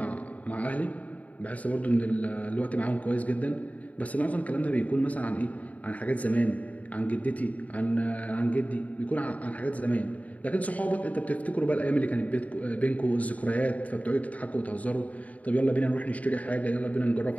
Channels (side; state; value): right; late; 0.070 ms